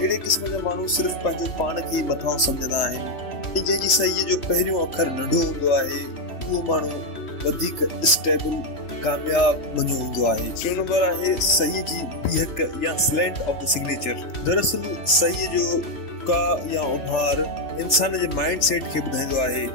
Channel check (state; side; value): late; right; 3.3 ms